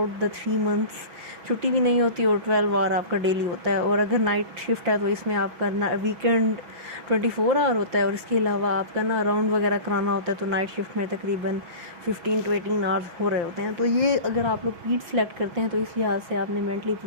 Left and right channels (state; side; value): late; left; 5.8 ms